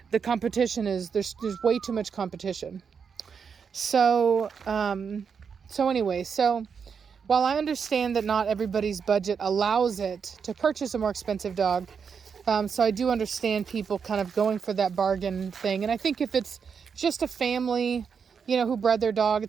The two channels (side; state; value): left; quieter; 6.4 dB